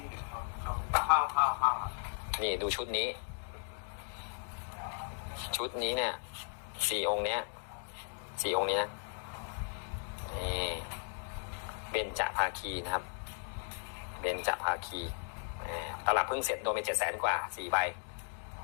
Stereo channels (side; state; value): right; silent; 54 dB below the other